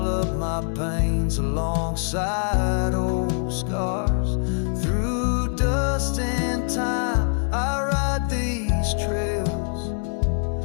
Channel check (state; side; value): silent; right; 63 dB below the other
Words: up my pains alongside old scars. Through dust and time, I ride